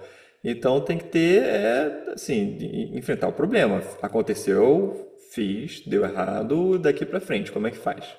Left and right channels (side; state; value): both; identical; correlation 1.00